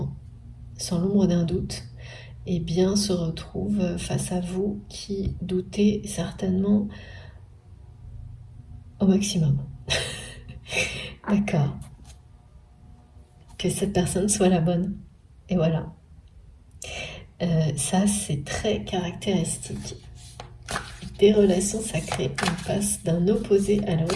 sans l'ombre d'un doute, eh bien se retrouve face à vous qui doutez certainement au maximum. D'accord. Que cette personne soit la bonne. Et voilà. Ça, c'est très caractéristique des relations sacrées. On passe d'un opposé à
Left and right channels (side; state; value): both; identical; correlation 1.00